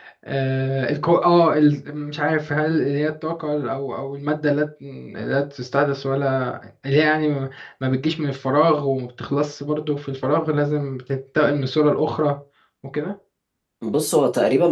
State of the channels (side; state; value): both; identical; correlation 1.00